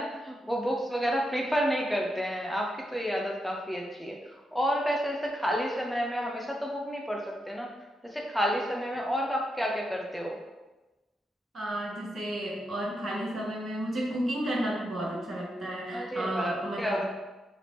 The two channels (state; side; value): normal; both; correlation 0.84